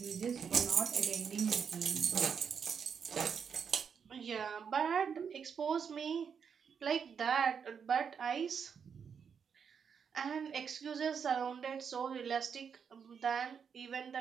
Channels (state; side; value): quieter; left; 6.8 dB